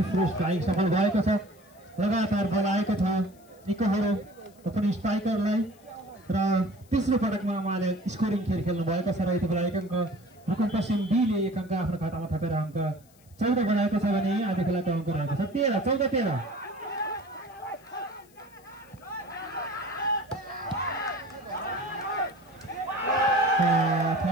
स्ट्राइक सफल भएको छ। लगातार बल आएको छ निकोहरो पनि स्ट्राइकरलाई र तेस्रो पटकमा उहाँले स्कोरिङ खेल खेल्नु भएको छ र यति बेला 1 अङ्क रुकुम पश्चिम बीले 1 अङ्क आफ्नो खातामा थपेर अङ्क 14 बनाएको छ भने आदि खोलाको अङ्क रहेको छ 13-14-13।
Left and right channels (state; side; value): noise; left; hiss, 29 dB below the sound